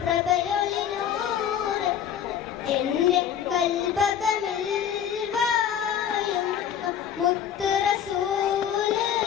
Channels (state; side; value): quieter; right; 9.1 dB